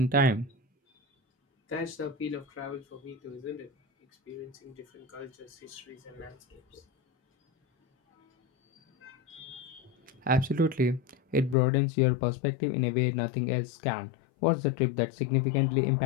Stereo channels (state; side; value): drops out; right; at 11.6 s